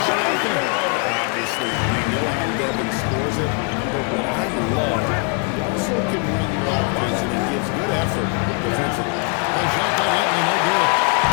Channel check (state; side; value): quieter; right; 35.6 dB